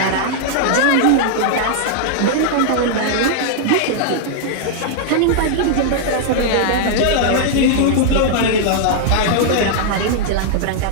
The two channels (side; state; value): both; different; correlation -0.01